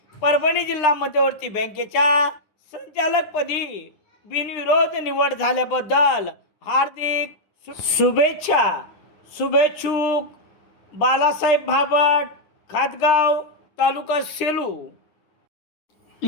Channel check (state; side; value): late; right; 9.9 ms